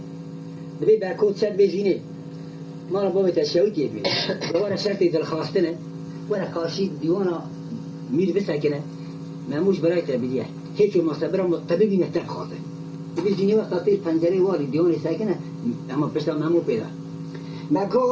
دبی برکوت شد بزینه ما را بابت شوکی بی دوباره شرطی دلخواستنه ولی کارشی دیوانا میر بسکنه ماموش برای تبدیه هیچ مصبر طبیبی نهتر خواهده دبی زینی وقت تیر پنجره واری دیوانی سکنه اما پشتا مامو پیدا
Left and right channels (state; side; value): identical; both; correlation 1.00